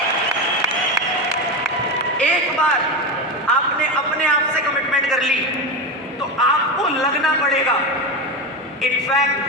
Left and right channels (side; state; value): both; normal; correlation 0.16